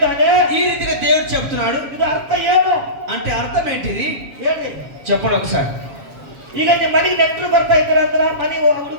ఈ రీతిగా దేవుడు చెప్తున్నాడు. ಇದು ಅರ್ಥ ಏನು అంటే అర్థం ఏంటిది ಹೇಳ್ರಿ. చెప్పండి ఒకసారి. ಈಗ ನಿಮ್ಮ ಮನೆಗೆ ನೆಂಟರು ಬರ್ತಾ ಇದ್ರ ಅಂದ್ರ ಮನೆ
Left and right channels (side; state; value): left; late; 7.4 ms